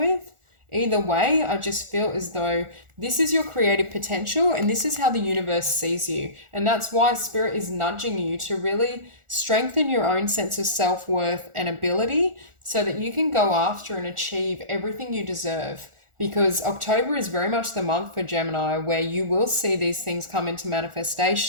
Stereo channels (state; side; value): late; left; 1.4 ms